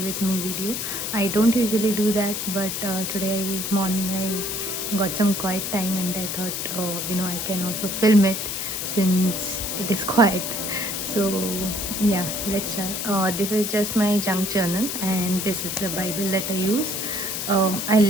me video. I don't usually do that, but today morning I got some quiet time and I thought, I can also film it since it is quiet. So yeah, let's start. This is just my junk journal and this is the Bible that I use.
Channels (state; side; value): noise; left; hiss, 3 dB below the sound